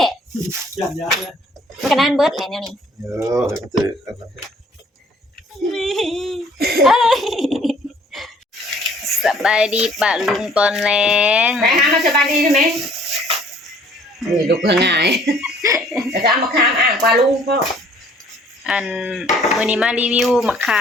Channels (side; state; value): both; normal; correlation 0.57